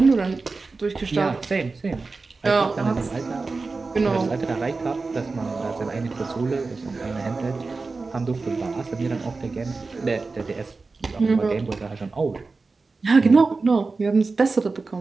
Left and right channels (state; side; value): quieter; left; 4.0 dB